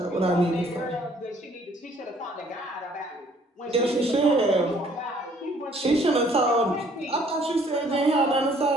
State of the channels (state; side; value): normal; both; correlation 0.60